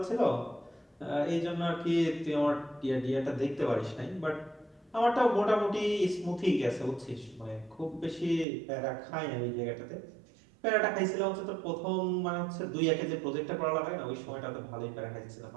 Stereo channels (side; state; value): left; drops out; at 8.5 s